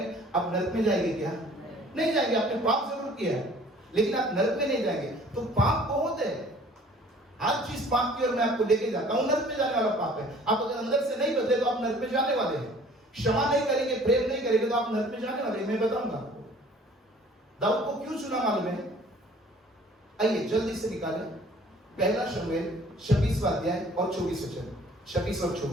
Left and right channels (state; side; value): normal; both; correlation 0.53